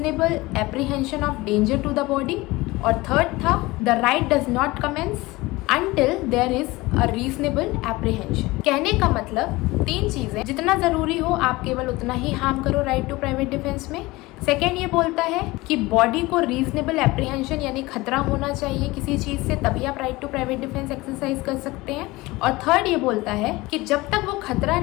apprehension of danger to the body. और थर्ड था the right does not commence until there is a reasonable apprehension। कहने का मतलब 3 चीज़ें, जितना ज़रूरी हो आप केवल उतना ही हार्म करो राइट टू प्राइवेट डिफेंस में। सेकेंड ये बोलता है कि बॉडी को रीजनेबल एप्रीहेंशन यानी खतरा होना चाहिए किसी चीज़ से, तभी आप right to private defence exercise कर सकते हैं। और थर्ड ये बोलता है कि जब तक वो खतरा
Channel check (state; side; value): quieter; right; 21.0 dB